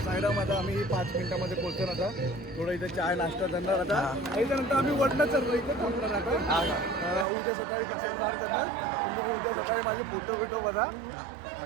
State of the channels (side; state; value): left; drops out; at 7.2 s